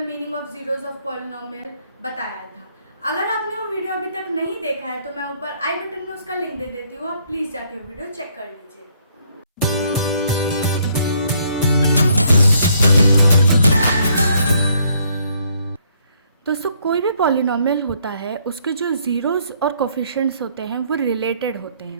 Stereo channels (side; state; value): both; inverted; correlation -0.68